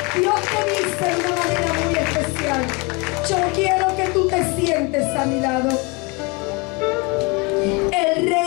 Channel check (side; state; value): right; quieter; 28.1 dB